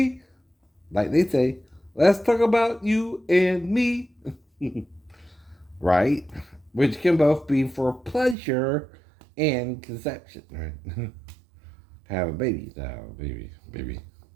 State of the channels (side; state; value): left; drops out; at 8.3 s